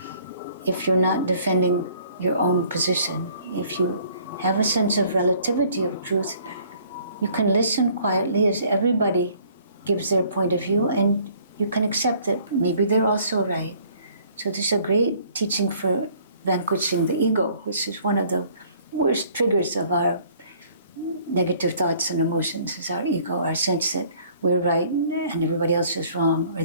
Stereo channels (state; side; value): inverted; both; correlation -0.58